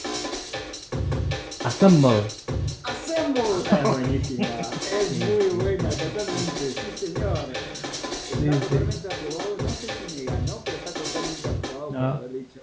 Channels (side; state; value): both; identical; correlation 1.00